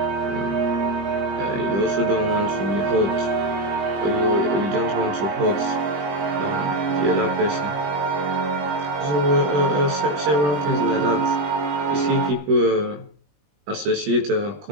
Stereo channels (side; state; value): left; late; 21 ms